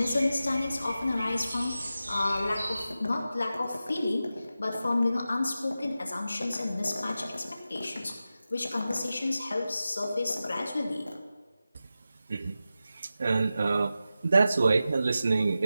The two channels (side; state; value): both; inverted; correlation -0.93